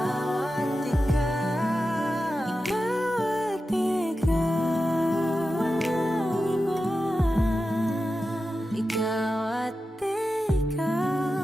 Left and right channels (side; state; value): both; normal; correlation 0.92